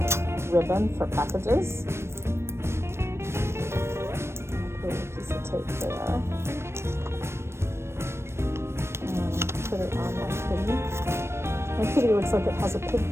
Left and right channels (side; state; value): left; late; 0.13 ms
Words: ribbon for packages. I'll put a piece of tape there. And put it on my kitty. My kitty looks like it has a